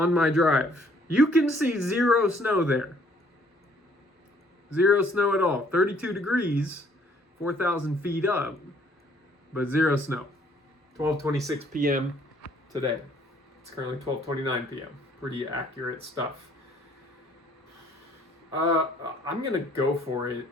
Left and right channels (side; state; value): both; normal; correlation 0.62